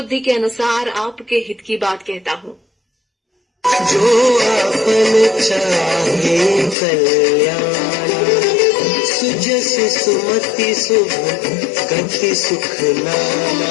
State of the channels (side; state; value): right; drops out; at 6.8 s